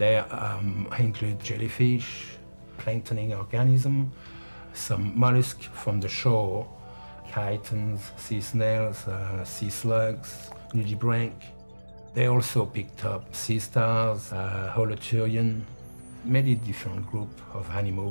include jellyfish, planktonic organisms, some mollusks from the shore, chitons, sea snails, sea slugs, nudibranch. They also picked up sea stars, holoturian, many different groups of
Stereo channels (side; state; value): both; inverted; correlation -1.00